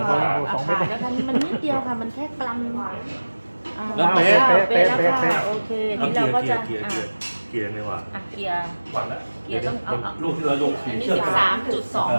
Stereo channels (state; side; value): inverted; both; correlation -1.00